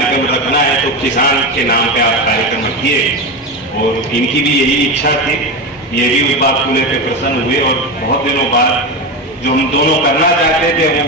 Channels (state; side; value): normal; both; correlation 0.18